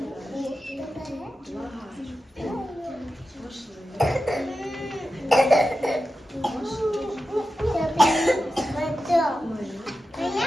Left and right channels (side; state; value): both; normal; correlation 0.91